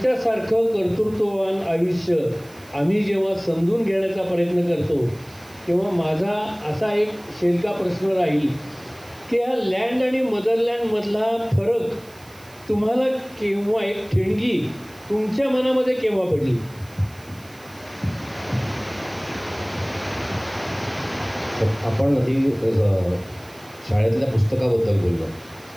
कर्तृत्ववान आयुष्य आम्ही जेव्हा समजून घेण्याचा प्रयत्न करतो तेव्हा माझा असा एक शेलका प्रश्न राहील की हा लँड आणि मदरलँडमधला फरक तुम्हाला केव्हा, एक ठिणगी तुमच्या मनामध्ये केव्हा पडली? आपण आधी शाळेतल्या पुस्तकाबद्दल बोललो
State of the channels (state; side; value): noise; right; hiss, 25 dB below the sound